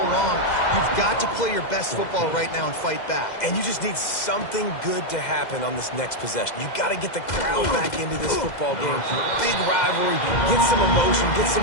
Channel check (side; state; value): right; late; 2.0 ms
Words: You've got to play your best football right now and fight back. And you just need something good to happen on this next possession. You got to get the crowd back into this football game. Big rivalry. Get some emotion. Get